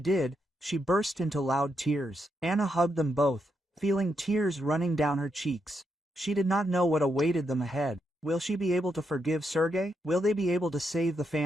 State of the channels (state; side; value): normal; both; correlation 0.81